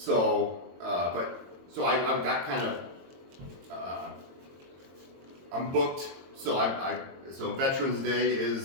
I've got kind of I'm booked. So Veterans Day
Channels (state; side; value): late; left; 22 ms